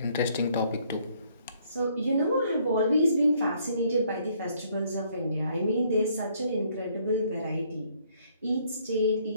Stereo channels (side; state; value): both; inverted; correlation -0.66